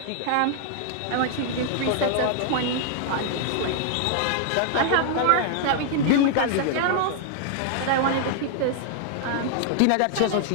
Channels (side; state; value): both; different; correlation 0.00